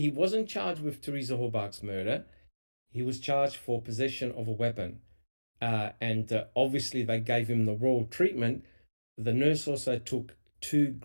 wasn't charged with Teresa Horbach's murder. He was charged for possession of a weapon. And obviously they gave him the royal treatment. The nurse also took 2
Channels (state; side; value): inverted; both; correlation -1.00